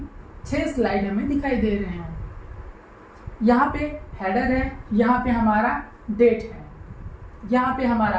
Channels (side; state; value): both; identical; correlation 1.00